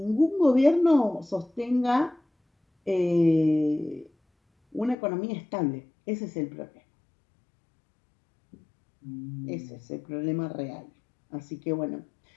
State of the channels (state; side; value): drops out; right; at 5.0 s